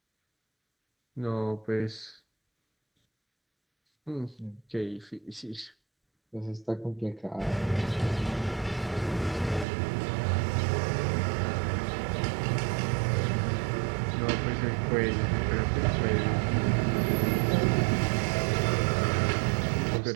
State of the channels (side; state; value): left; drops out; at 9.7 s